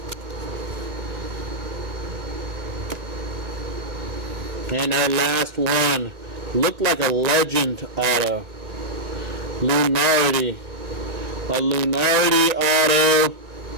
And our last one, looked like a legend auto. Lunardi. A Lunardi auto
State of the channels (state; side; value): late; left; 1.9 ms